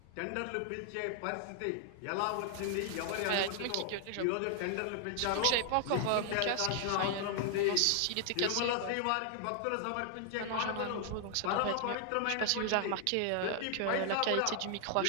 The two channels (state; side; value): different; both; correlation 0.00